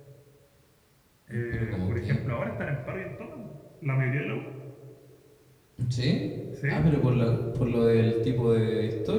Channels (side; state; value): both; identical; correlation 1.00